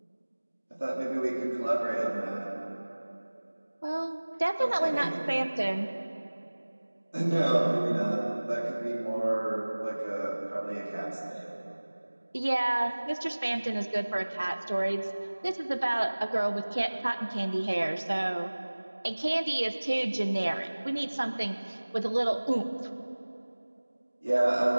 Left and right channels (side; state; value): both; inverted; correlation -1.00